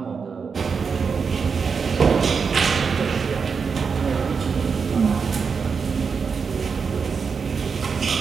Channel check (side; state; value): left; quieter; 5.6 dB